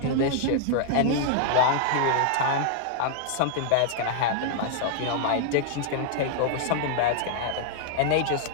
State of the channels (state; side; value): different; both; correlation -0.01